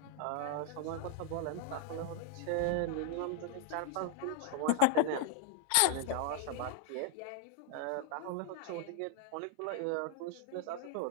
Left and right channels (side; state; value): both; different; correlation 0.00